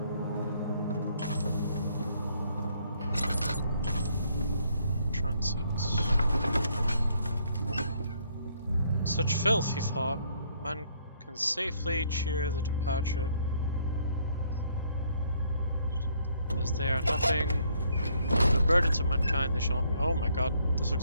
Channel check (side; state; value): both; inverted; correlation -0.68